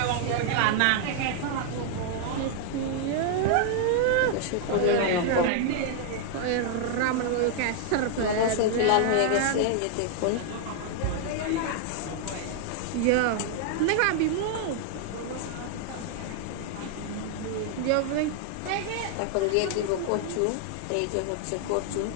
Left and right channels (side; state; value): both; different; correlation 0.00